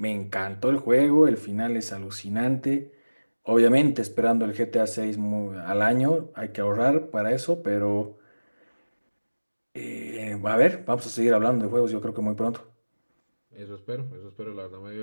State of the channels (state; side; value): inverted; both; correlation -1.00